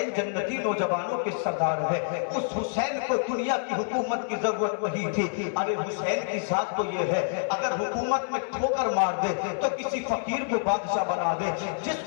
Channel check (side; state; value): right; silent; 60 dB below the other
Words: जन्नती नौजवानों के सरदार है। उस हुसैन को दुनिया की हुकूमत की जरूरत नहीं थी। अरे हुसैन की जात तो ये है, अगर हुकूमत में ठोकर मार दे तो किसी फकीर को बादशाह बना दे,